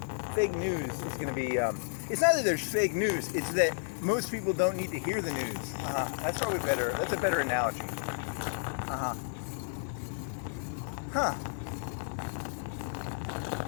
Fake news is going to be. It's not that there's fake news. It's that most people don't need to hear the news. That's probably better. That's a better analogy.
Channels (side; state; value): right; silent; 56 dB below the other